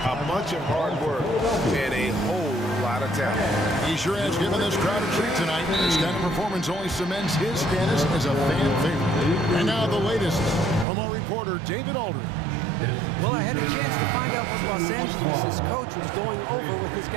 a bunch of hard work, and a whole lot of talent. He sure has given this crowd a treat tonight. This kind of performance only cements his status as a fan favorite. And now the latest from our reporter, David Aldridge. Well, I had a chance to find out what Los Angeles' coach was going over with his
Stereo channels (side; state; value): left; drops out; at 10.9 s